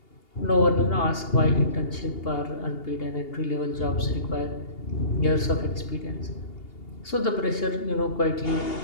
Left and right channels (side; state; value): right; late; 2.8 ms